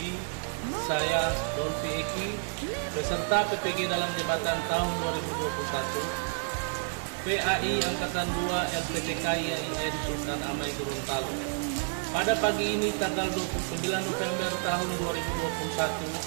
saya Dolfi Eki, peserta PPG dalam jabatan tahun 2021, PAI Angkatan 2 LPTKIAIN Sultan Amai Gorontalo. Pada pagi ini tanggal 29 November tahun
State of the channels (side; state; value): left; silent; digital silence